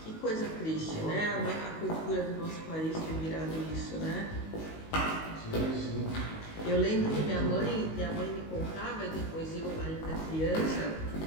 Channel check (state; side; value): late; right; 19 ms